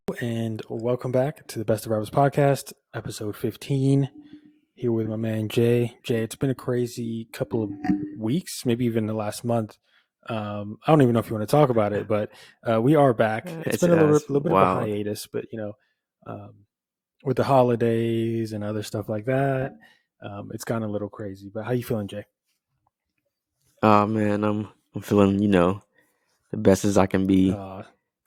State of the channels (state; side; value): identical; both; correlation 1.00